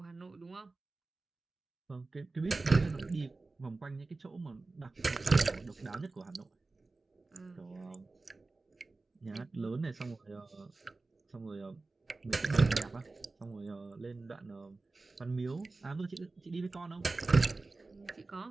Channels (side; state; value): left; quieter; 3.5 dB